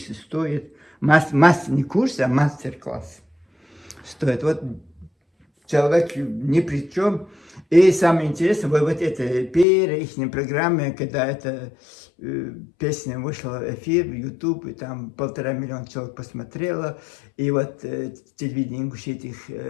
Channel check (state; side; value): drops out; right; at 9.7 s